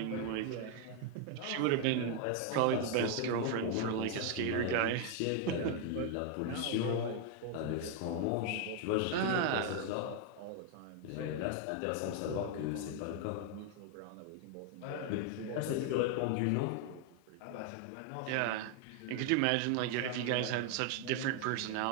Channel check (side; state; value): both; different; correlation 0.00